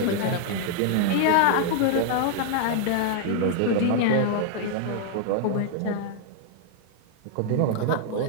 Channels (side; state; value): both; different; correlation 0.00